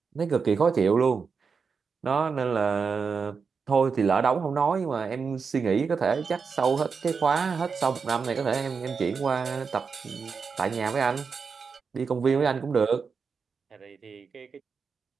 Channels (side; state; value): left; quieter; 5.5 dB